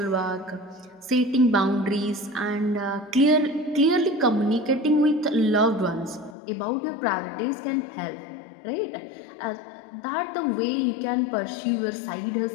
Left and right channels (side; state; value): right; drops out; at 6.4 s